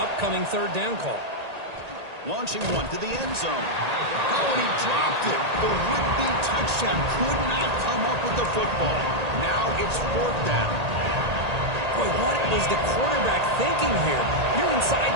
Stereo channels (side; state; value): left; late; 1.8 ms